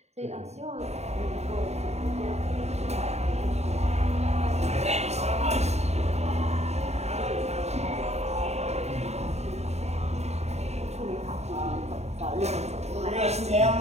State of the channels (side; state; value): left; late; 0.32 ms